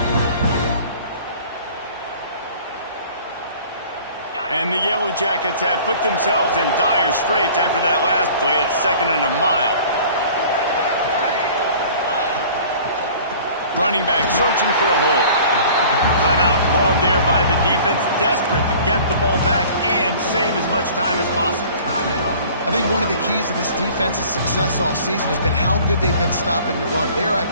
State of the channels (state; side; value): inverted; both; correlation -0.48